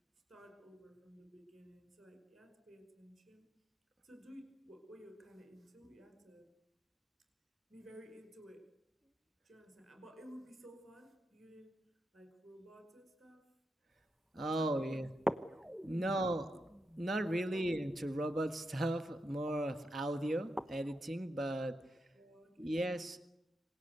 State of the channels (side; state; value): both; normal; correlation 0.85